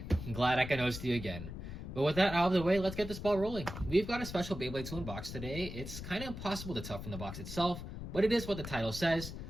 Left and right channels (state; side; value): noise; left; rumble, 9 dB below the sound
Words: I'm glad I can host you again. But with that out of the way, let's get this ball rolling. We've got a special Beyblade to unbox today. It's kind of impossible to tell from the box itself, but it is what the title says.